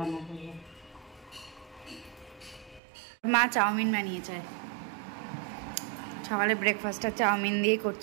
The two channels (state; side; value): drops out; left; at 2.8 s